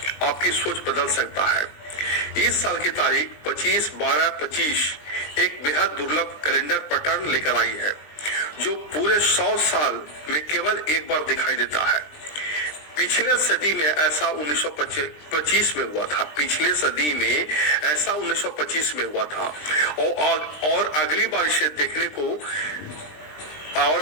आपकी सोच बदल सकता है। इस साल की तारीख 25/12/25 एक बेहद दुर्लभ कैलेंडर पैटर्न लेकर आई है, जो पूरे 100 साल में केवल एक बार दिखाई देता है। पिछले सदी में ऐसा 1925 में हुआ था। पिछले सदी में ऐसा 1925 में हुआ था और अगली बार इसे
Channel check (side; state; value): right; late; 20 ms